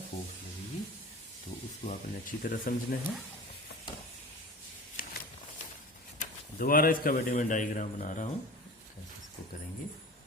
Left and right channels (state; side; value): normal; both; correlation 0.36